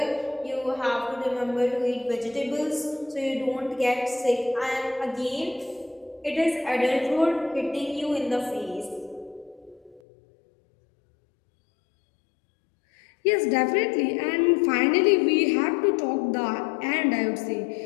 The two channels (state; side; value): drops out; right; at 10.0 s